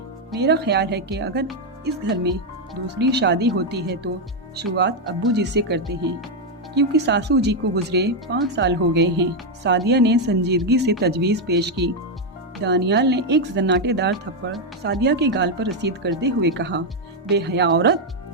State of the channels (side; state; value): both; normal; correlation 0.02